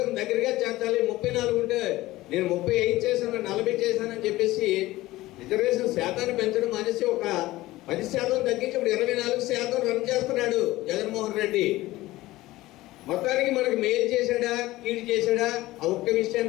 దగ్గరగా చేర్చాలి. 34 ఉంటే నేను 35 చేశాను, 40 చేశానని చెప్పేసి రిజర్వేషన్ శాతాన్ని పెంచడం అనేసి ఒక 10% తగ్గించి ఇప్పుడు 24% రన్ చేస్తున్నాడు జగన్మోహన్ రెడ్డి. మొత్తానికి మనకు మేలు చేశాడా, కీడు చేశాడా, ఆ ఒక్క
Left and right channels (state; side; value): quieter; right; 17.7 dB